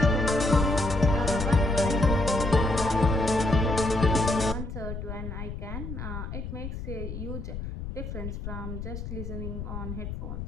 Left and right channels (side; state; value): left; noise; rumble, 7 dB below the sound